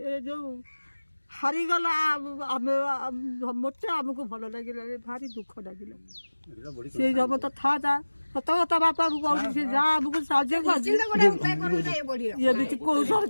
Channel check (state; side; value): inverted; both; correlation -1.00